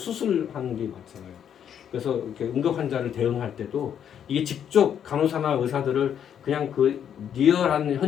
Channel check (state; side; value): quieter; right; 8.9 dB